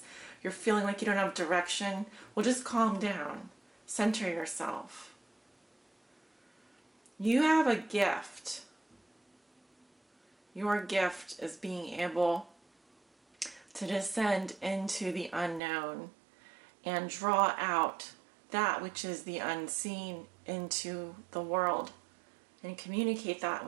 you're feeling like you don't have direction, well, just calm down. Center yourself. You have a gift. Your gift is being able to descend into the unknown and draw out that which is the unseen into the world and communicate that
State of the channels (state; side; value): drops out; left; at 15.6 s